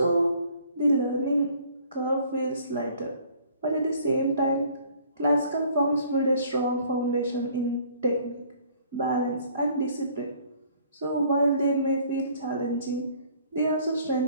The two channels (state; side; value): inverted; both; correlation -0.57